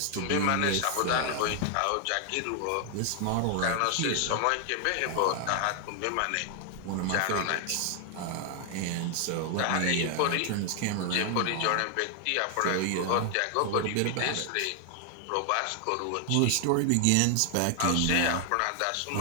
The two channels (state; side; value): different; both; correlation 0.00